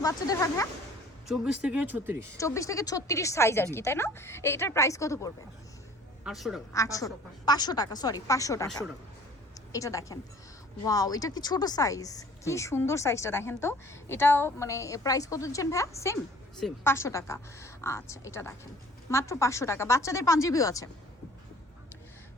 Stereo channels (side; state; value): both; normal; correlation 0.51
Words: বাচ্চাদের হয় ভাইয়া? 24 থেকে 36। 24 থেকে 36 সাইজ আর কি, তাই না? এটার প্রাইস কত পড়বে? 800 টাকা। 500 টাকা, সরি 500 টাকা। 500 টাকা। এটা দেখেন, ওয়াও, এটা কি ছোট সাইজ, কি সুন্দর সাইজটা দেখেন তো। এটাও মানে প্রাইস কত দিচ্ছেন ভাইয়া? সেম 500 টাকা। আচ্ছা, এটা দেখেন মাত্র 500 টাকা। বাচ্চাদের পাঞ্জাবিও আছে,